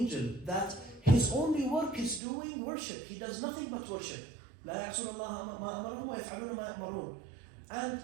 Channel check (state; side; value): drops out; left; at 2.2 s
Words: that his only work is doing worship. He does nothing but worship. لا يعصون الله ما أمرهم ويفعلون ما يأمرون. And